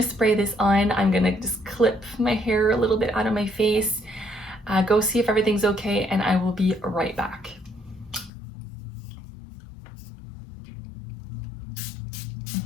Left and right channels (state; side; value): drops out; right; at 8.3 s